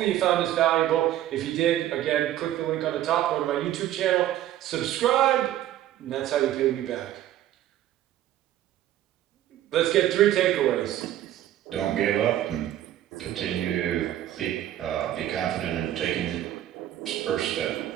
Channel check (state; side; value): quieter; left; 12.7 dB